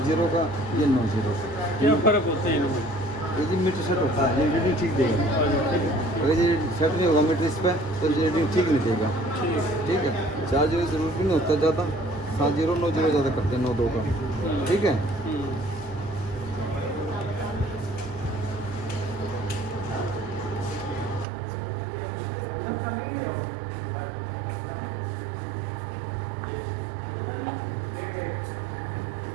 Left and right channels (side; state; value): left; drops out; at 21.2 s